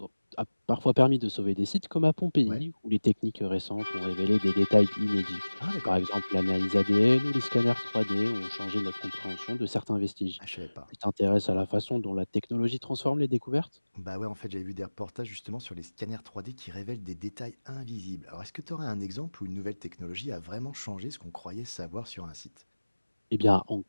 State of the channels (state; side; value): inverted; both; correlation -1.00